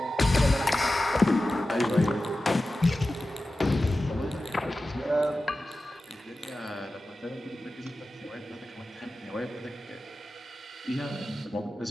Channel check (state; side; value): normal; both; correlation 0.94